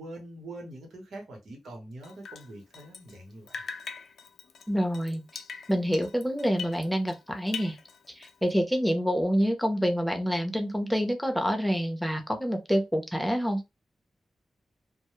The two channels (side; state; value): both; normal; correlation 0.97